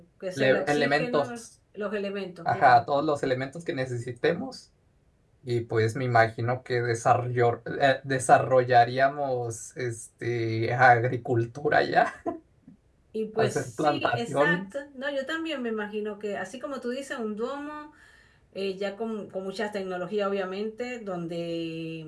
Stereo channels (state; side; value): identical; both; correlation 1.00